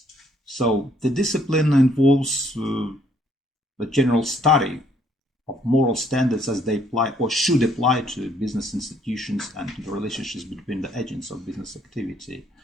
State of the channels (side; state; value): both; normal; correlation 0.66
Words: So the discipline involves the general study of moral standards as they apply or should apply to business institutions and to the relationships between the agents of business activity.